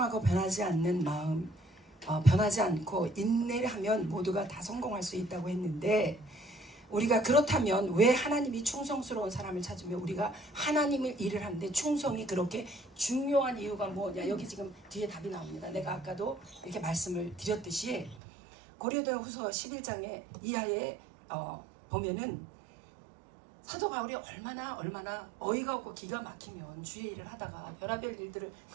변하지 않는 마음, 변하지 않고 인내를 하면 모두가 다 성공할 수 있다고 했는데, 우리가 그렇다면 왜 하나님이 충성스러운 사람을 찾으며 우리가 하나님의 일을 하는데 충성이 그렇게 중요한 이유가 뭐냐? 여기 지금 뒤에 답이 나옵니다. 내가 아까도 이렇게 말씀을 드렸듯이 고린도후서 11장에 이하에 보면은 사도 바울이 얼마나 어이가 없고 기가 막히면 주의 일을 하다가 별의별 일들을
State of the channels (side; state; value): left; drops out; at 18.2 s